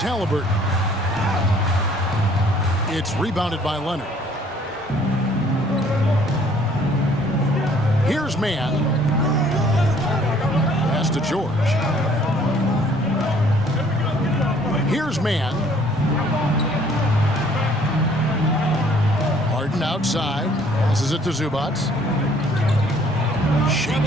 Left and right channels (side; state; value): both; normal; correlation 0.59